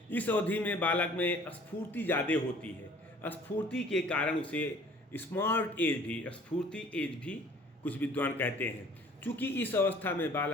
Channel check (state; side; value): normal; both; correlation 0.52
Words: इस अवधि में बालक में स्फूर्ति ज़्यादा होती है। स्फूर्ति के कारण उसे स्मार्ट एज भी कुछ विद्वान कहते हैं, क्योंकि इस अवस्था में